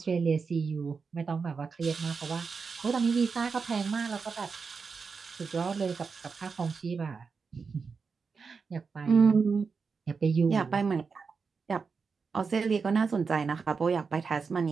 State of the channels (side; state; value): left; quieter; 5.1 dB